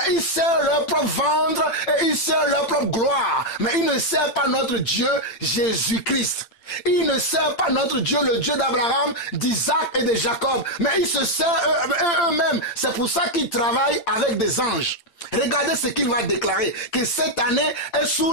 ils servent leur propre ventre et ils servent leur propre gloire. Mais ils ne servent pas notre Dieu, Jésus-Christ. Ils ne servent pas notre Dieu, le Dieu d'Abraham, d'Isaac et de Jacob, mais ils se servent eux-mêmes. C'est pour ça qu'ils travaillent avec des anges. Regardez ce qu'il va déclarer, que cette année est sous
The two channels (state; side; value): late; right; 8.9 ms